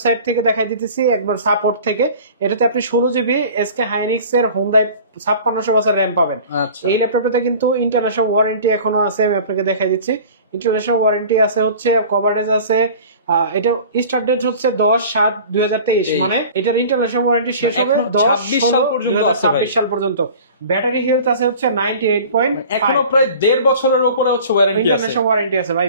থেকে দেখাই দিতেছি, একবার সাপোর্ট থেকে। এটাতে আপনি 16GB SK Hynix এর Hyundai 5600 বছর RAM পাবেন। এই ল্যাপটপটাতে কিন্তু ইন্টারন্যাশনাল ওয়ারেন্টি এখনো আছে, আমি আপনাকে দেখাই দিচ্ছি। ইন্টারন্যাশনাল ওয়ারেন্টি আছে হচ্ছে, কভারেজ আছে। এটা স্টার্ট ডেট হচ্ছে 10/7/2023, মানে এটার ইন্টারন্যাশনাল ওয়ারেন্টি শেষ হবে 10/26 সাল পর্যন্ত। ব্যাটারি হেলথ আছে হচ্ছে 98. এখনো প্রায় 1.5 বছরের উপরে হচ্ছে ওয়ারেন্টি আছে, ইন্টারন্যাশনাল ওয়ারেন্টি আছে ভাই।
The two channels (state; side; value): inverted; both; correlation -0.42